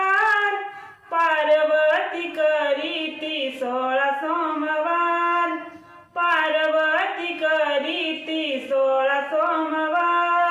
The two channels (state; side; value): identical; both; correlation 1.00